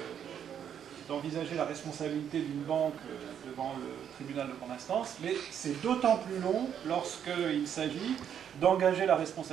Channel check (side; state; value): left; quieter; 8.8 dB